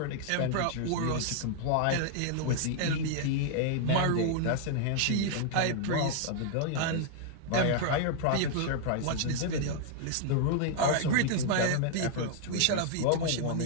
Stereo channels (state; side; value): different; both; correlation 0.00